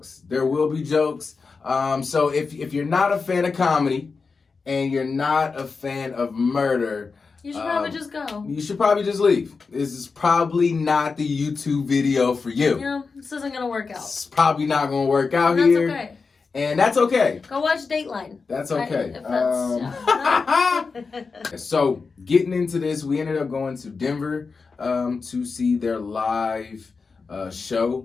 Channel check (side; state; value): right; quieter; 4.7 dB